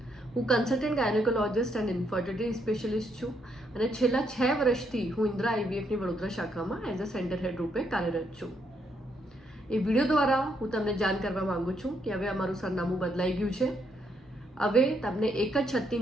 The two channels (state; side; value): normal; both; correlation 0.75